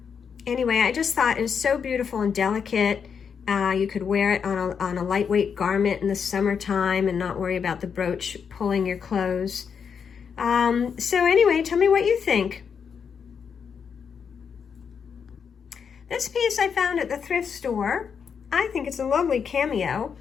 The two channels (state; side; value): quieter; right; 6.7 dB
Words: Anyway, I just thought it was so beautiful and delicate. You could wear it on a lightweight garment in the summertime and not worry about the brooch pulling your clothes. So anyway, tell me what you think. This piece I found at the thrift store. I think it's a lovely cameo.